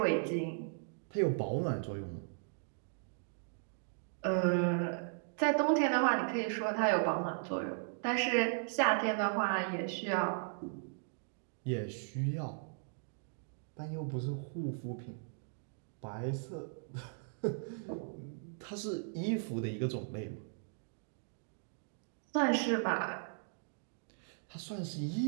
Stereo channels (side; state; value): left; silent; digital silence